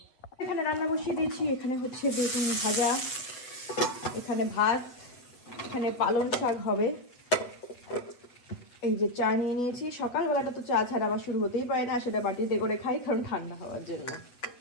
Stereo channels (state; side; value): late; right; 8.2 ms